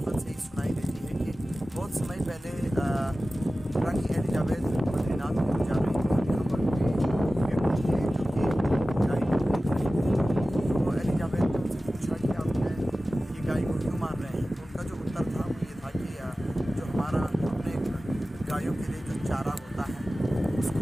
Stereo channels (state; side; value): normal; both; correlation 0.96